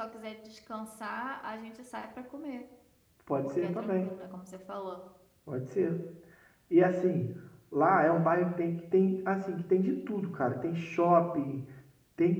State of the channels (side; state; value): both; identical; correlation 1.00